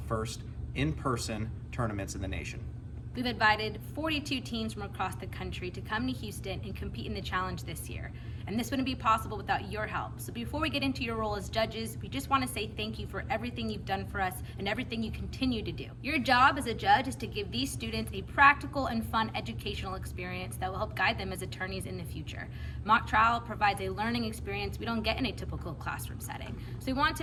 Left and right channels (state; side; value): identical; both; correlation 1.00